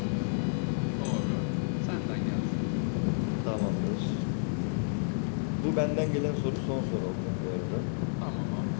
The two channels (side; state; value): right; silent; 55 dB below the other